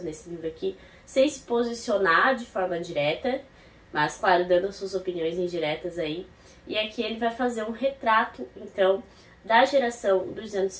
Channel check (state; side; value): identical; both; correlation 1.00